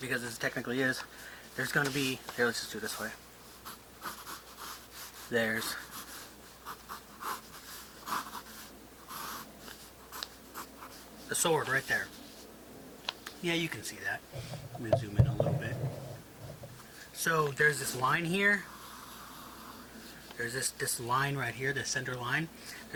this technically is. There's going to be, here, let's just do it this way. There's the sword right there. Yeah, you can see that. I'm going to zoom in a little bit. So there's this line here. There's this line right here, the center line.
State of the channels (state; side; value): identical; both; correlation 1.00